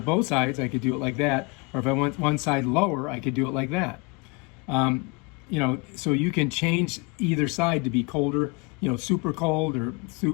both sides, I could do it like that. Or if I want one side lower, I could do it like that. You know, so you can change either side to be colder, you know, super cold or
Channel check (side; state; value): right; quieter; 28.9 dB